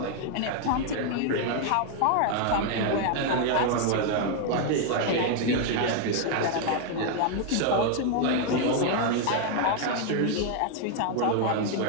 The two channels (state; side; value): different; both; correlation 0.00